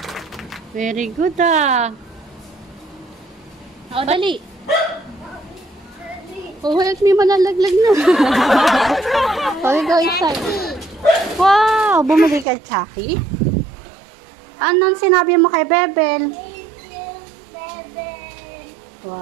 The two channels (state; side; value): drops out; left; at 12.5 s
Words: Very good ah. O, dali. Oh, help me, malalaglag na. Okay, go inside. Wow, bumili ka, Chucky. Anong sinabi mo kay Bebel? Thank you, Bebel.